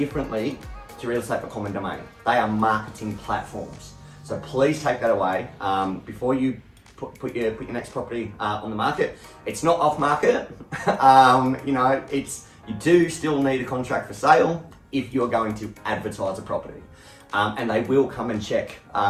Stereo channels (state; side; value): identical; both; correlation 1.00